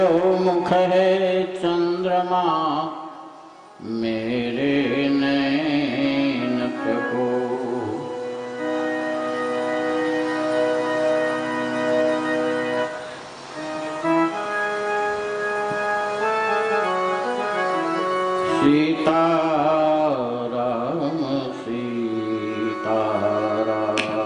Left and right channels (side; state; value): both; identical; correlation 1.00